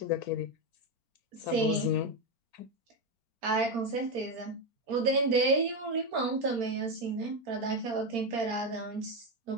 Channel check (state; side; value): late; left; 4.4 ms